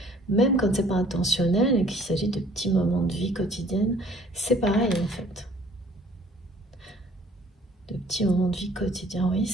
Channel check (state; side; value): normal; both; correlation 0.55